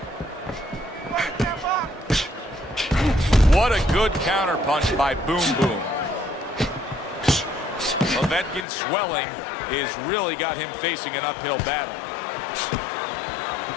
What a good counter punch by Boom Boom. Povetkin's swelling has really got him facing an uphill battle.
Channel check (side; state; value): right; drops out; at 8.7 s